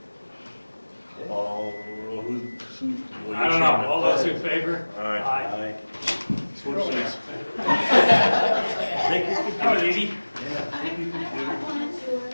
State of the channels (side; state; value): both; inverted; correlation -1.00